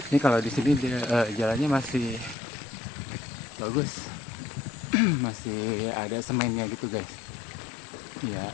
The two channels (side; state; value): right; drops out; at 2.4 s